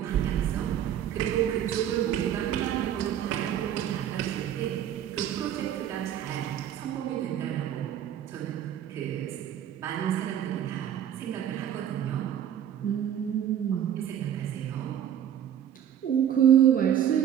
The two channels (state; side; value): quieter; left; 10.1 dB